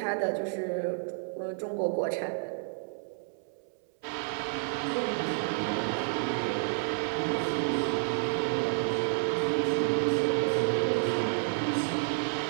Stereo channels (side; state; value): left; silent; 58 dB below the other